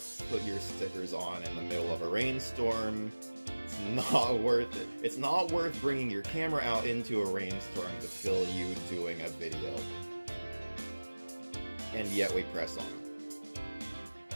put your stickers on in the middle of a rainstorm. It's not worth it. It's not worth bringing your camera out into a rainstorm to film you doing a video. And yet we press on.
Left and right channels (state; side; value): inverted; both; correlation -1.00